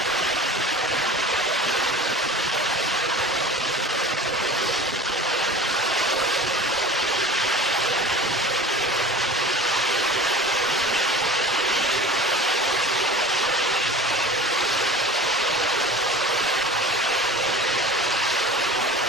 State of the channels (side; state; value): both; normal; correlation 0.39